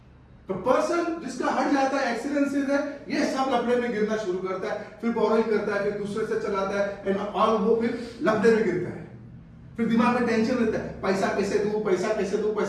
तो person जिसका हट जाता है, एक्सीलेंसेस है, ये सब लफड़े में गिरना शुरू करता है, फिर बोरोइंग करता है, फिर दूसरे से चलाता है, एंड ऑल वो फिर लफड़े में गिरता है। फिर दिमाग में टेंशन रहता है, पैसा कैसे दूं, पैसा कैसे दूं,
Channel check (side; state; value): both; identical; correlation 1.00